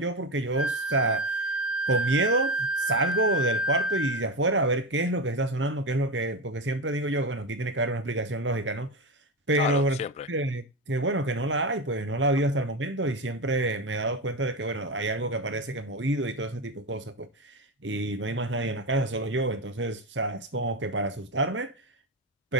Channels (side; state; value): both; normal; correlation 0.17